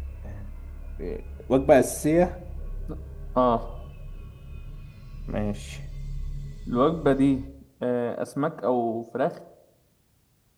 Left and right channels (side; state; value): both; identical; correlation 1.00